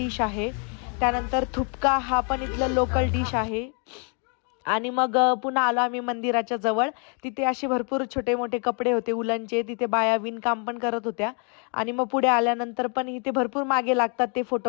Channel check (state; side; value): quieter; right; 38.2 dB